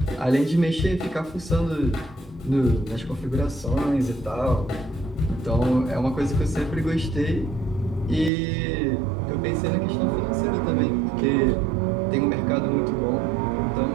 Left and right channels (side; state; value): left; drops out; at 8.3 s